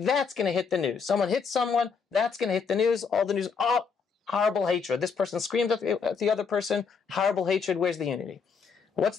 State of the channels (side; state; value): right; quieter; 5.7 dB